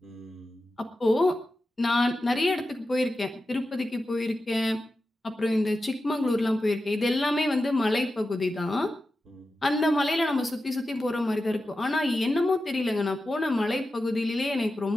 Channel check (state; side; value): normal; both; correlation 0.92